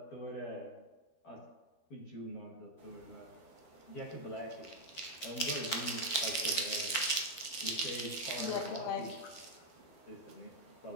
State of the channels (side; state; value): right; late; 12 ms